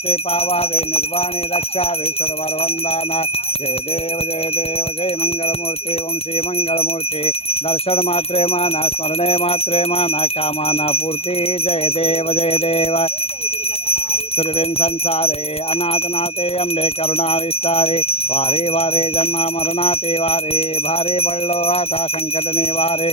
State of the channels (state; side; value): late; right; 0.29 ms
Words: पावावे निर्वाणी रक्षावे सुरवर वंदना जय देव जय मंगलमूर्ती ओम श्री मंगलमूर्ती दर्शन मात्रे मान स्मरणे मात्रे मान कामना पूर्ति जय देव सुरविन संसारे अनाथनाथे अम्बे करुणा विस्तारे वारे वारे जन्म मरणाते वारे भारे पडलो आता संकट निवारे